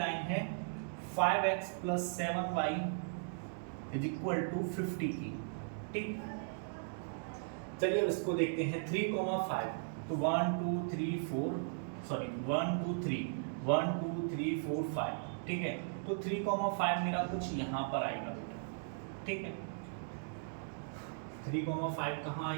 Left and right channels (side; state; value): left; silent; digital silence